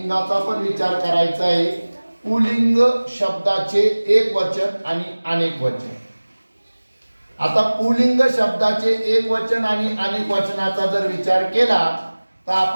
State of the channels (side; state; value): both; inverted; correlation -1.00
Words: पण विचार करायचा आहे। पुल्लिंग शब्दाचे एक वचन आणि अनेक वचन। आता पुल्लिंग शब्दाचे एक वचन आणि अनेक वचनाचा जर विचार केला तर